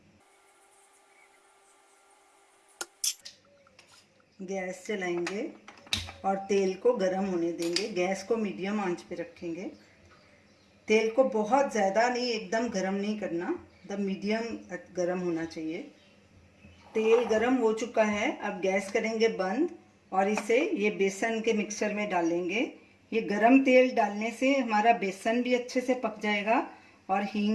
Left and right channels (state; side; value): identical; both; correlation 1.00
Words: गैस जलाएंगे और तेल को गरम होने देंगे। गैस को मीडियम आंच पे रखेंगे। तेल को बहुत ज़्यादा नहीं, एकदम गरम नहीं करना, एकदम मीडियम गरम होना चाहिए। तेल गरम हो चुका है। अब गैस करेंगे बंद और इसे ये बेसन के मिक्सचर में डालेंगे। ये गरम तेल डालने से हमारा बेसन भी अच्छे से पक जाएगा और